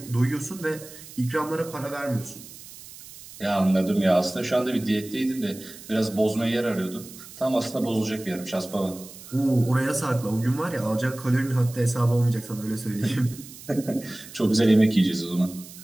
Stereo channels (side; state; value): right; noise; hiss, 17 dB below the sound